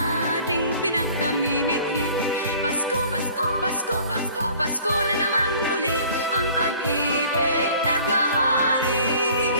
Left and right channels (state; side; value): inverted; both; correlation -0.50